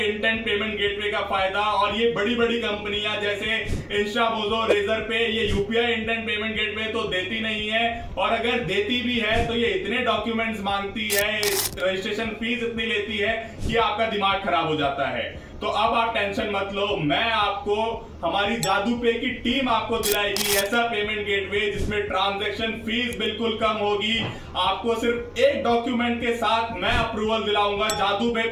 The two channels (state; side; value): identical; both; correlation 1.00